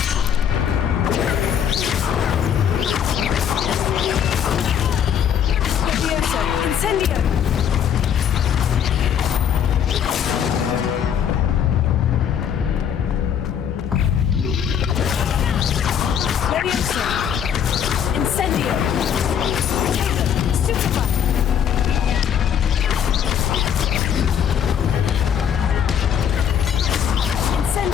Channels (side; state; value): right; quieter; 8.5 dB